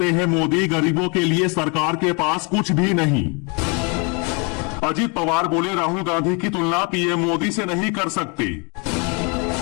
हैं मोदी, गरीबों के लिए सरकार के पास कुछ भी नहीं। अजीत पवार बोले राहुल गांधी की तुलना पीएम मोदी से नहीं कर सकते।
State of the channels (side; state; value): right; quieter; 33.0 dB